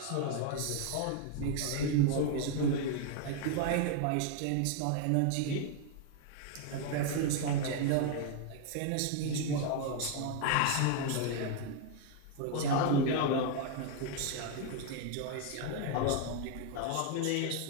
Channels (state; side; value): different; both; correlation 0.01